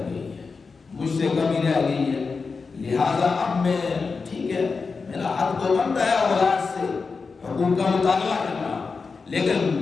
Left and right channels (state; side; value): quieter; right; 4.7 dB